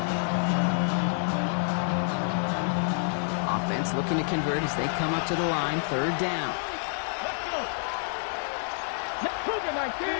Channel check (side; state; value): right; silent; 57 dB below the other